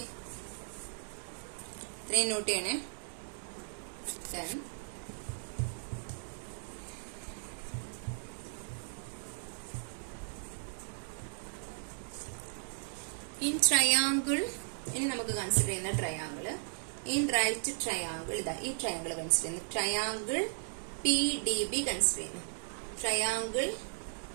ഇത്രയും നോട്ട് ചെയ്യണേ. Then in triangle, ഇനി നമുക്ക് കൺസിഡർ ചെയ്യുന്ന ട്രയാങ്കിൾ ഇൻ റൈറ്റ് ട്രയാങ്കിൾ, ഇതാ ഈ ട്രയാങ്കിൾ കൺസിഡർ ചെയ്യുന്നു. ട്രയാങ്കിൾ PDB കൺസിഡർ ചെയ്യുന്നു. Triangle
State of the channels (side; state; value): left; silent; digital silence